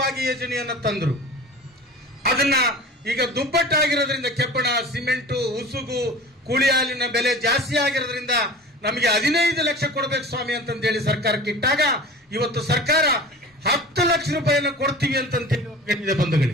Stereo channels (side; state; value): both; normal; correlation 0.39